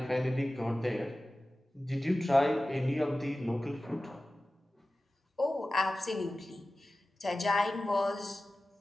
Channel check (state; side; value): normal; both; correlation 0.96